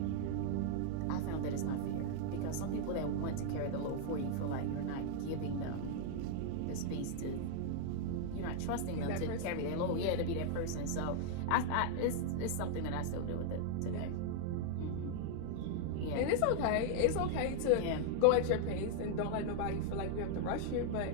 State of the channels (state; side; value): different; both; correlation 0.00